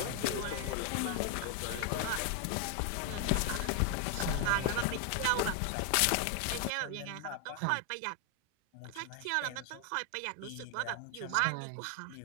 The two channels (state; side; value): different; both; correlation 0.01